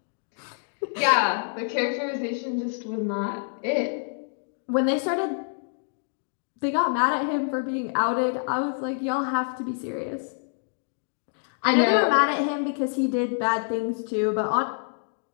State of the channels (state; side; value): silent; right; digital silence